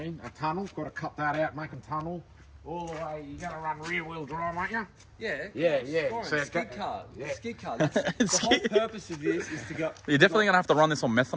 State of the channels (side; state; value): both; identical; correlation 1.00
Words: mean? A tunnel. Got to cut that out, make a tunnel. All the way. You're going to run rear-wheel drive, aren't you? Yeah. Yeah. So skid car. Yeah. Skid car. That's, the whole purpose of this is to go. You're definitely going to have to run this on